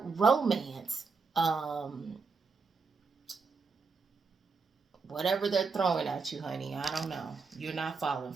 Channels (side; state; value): left; quieter; 4.6 dB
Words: romance. Whatever they're throwing at you, honey, I don't know. You're not falling